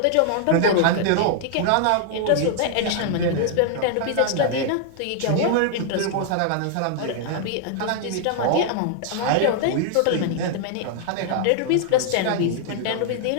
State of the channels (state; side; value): different; both; correlation 0.00